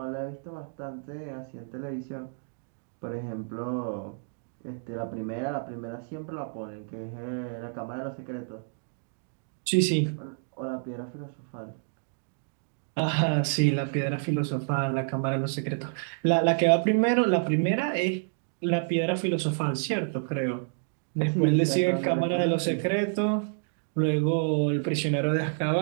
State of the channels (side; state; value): left; silent; digital silence